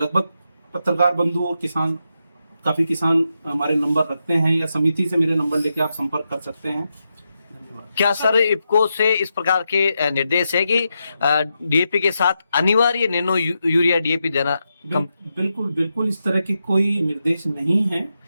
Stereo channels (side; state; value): both; inverted; correlation -0.86